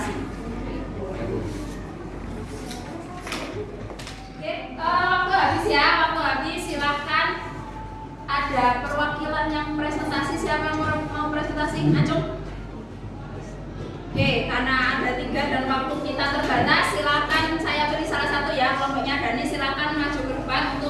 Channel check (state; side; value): identical; both; correlation 1.00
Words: Oke, waktu habis ya, waktu habis. Silahkan, ada perwakilan yang presentasi. Siapa yang mau presentasi? Acung. Oke, karena ada 3 dan waktu kita terbatas, silakan saya beri salah satu ya, kelompoknya Dani, silakan maju ke depan